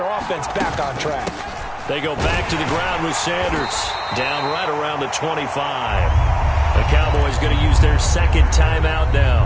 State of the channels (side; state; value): both; identical; correlation 1.00